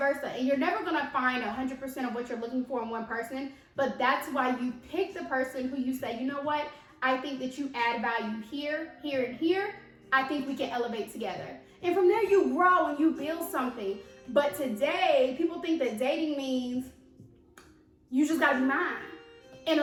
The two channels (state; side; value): identical; both; correlation 1.00